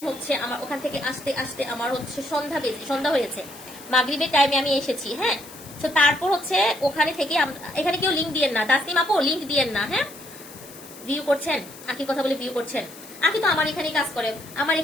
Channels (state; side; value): noise; left; hiss, 18 dB below the sound